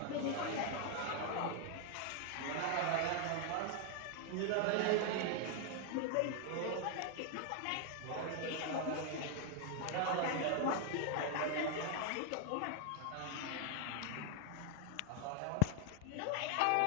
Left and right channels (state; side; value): different; both; correlation 0.00